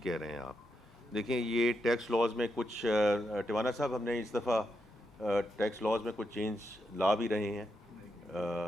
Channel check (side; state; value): both; normal; correlation 0.83